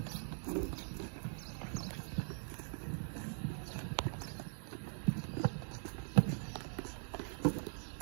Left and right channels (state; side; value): silent; left; digital silence